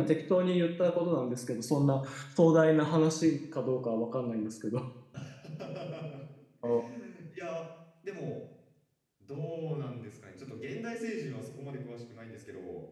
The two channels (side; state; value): both; identical; correlation 1.00